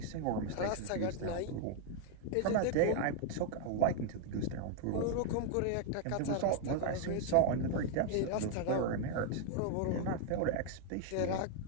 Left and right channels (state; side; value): different; both; correlation 0.00